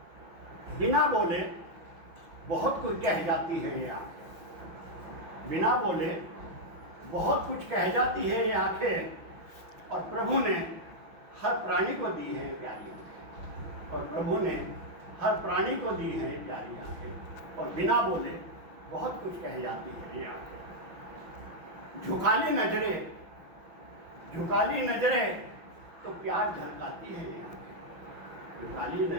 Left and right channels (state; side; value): late; left; 6.0 ms